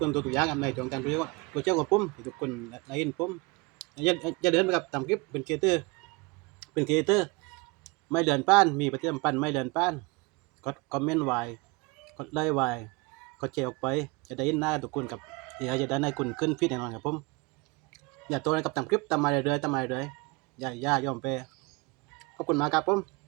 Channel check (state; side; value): quieter; left; 26.5 dB